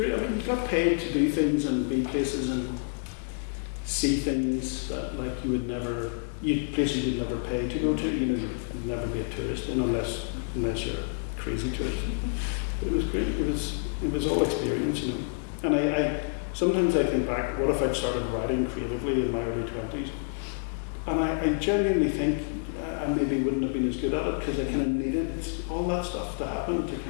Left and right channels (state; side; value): silent; right; 59 dB below the other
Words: I mean, you got paid to do things and be places and see things that like you would never, places you'd never pay to go to. You'd never be a tourist in unless you're a crazy tourist. But it was great. It was all experience, And I sometimes I think back, what if I'd started writing creatively in my early 20s? And I genuinely think I maybe wouldn't have been as good at it because I kind of needed all that stuff to happen to